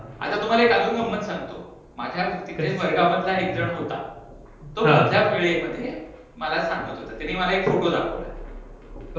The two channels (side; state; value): both; identical; correlation 1.00